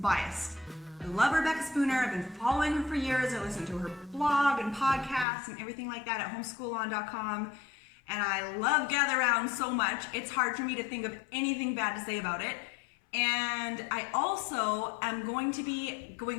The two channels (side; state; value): right; drops out; at 5.2 s